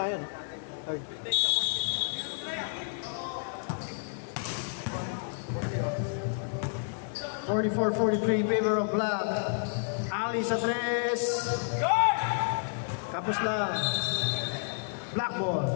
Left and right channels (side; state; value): right; silent; 56 dB below the other